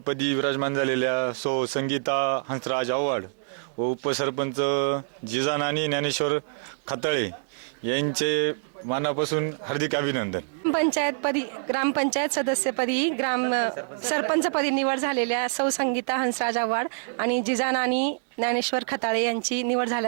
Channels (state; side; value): silent; left; digital silence